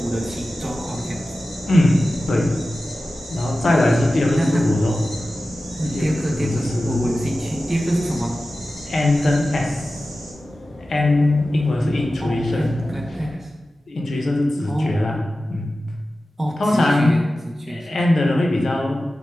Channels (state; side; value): normal; both; correlation 0.94